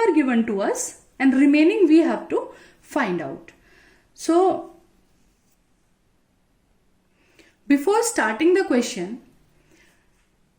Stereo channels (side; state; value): both; identical; correlation 1.00